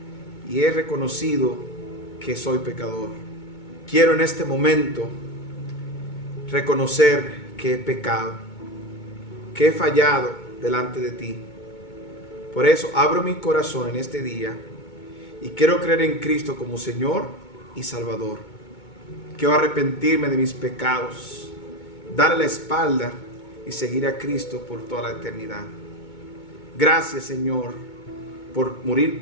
y he reconocido que soy pecador. Quiero en este momento reconocer que he pecado, que he fallado delante de ti. Por eso abro mi corazón en este día y quiero creer en Cristo como Señor y Salvador. Quiero arrepentirme de mis pecados, darle la espalda y seguir a Cristo por toda la eternidad. Gracias, Señor, por morir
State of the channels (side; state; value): right; late; 2.2 ms